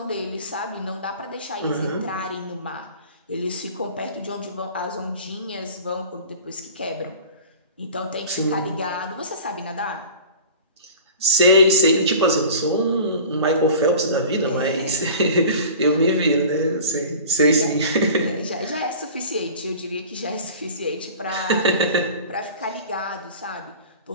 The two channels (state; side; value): inverted; both; correlation -0.40